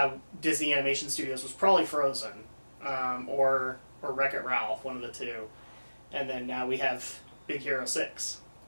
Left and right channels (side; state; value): both; inverted; correlation -1.00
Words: Disney Animation Studios was probably Frozen, or Wreck-It Ralph, one of the two. And then now we have Big Hero 6,